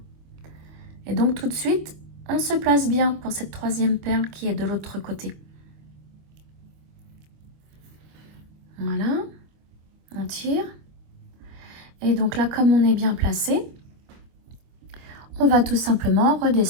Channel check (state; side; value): late; left; 25 ms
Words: Et donc tout de suite, on se place bien pour cette troisième perle qui est de l'autre côté. Voilà, on tire. Et donc là, comme on est bien placé, on va tout simplement